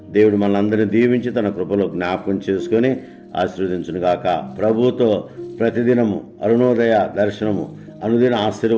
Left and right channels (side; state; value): both; identical; correlation 1.00